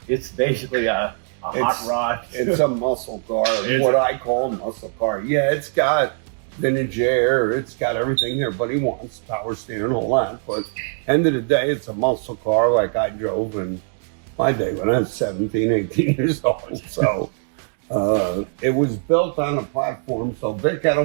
it's basically a hot rod? It's a muscle car, what I call a muscle car. Yeah, it's got vintage air, it's got everything everybody wants, power steering and all that, but end of the day, it's a muscle car like I drove in my day when I was 17, 18 years old. So it was built on a platform. So Vic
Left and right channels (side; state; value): left; silent; 58 dB below the other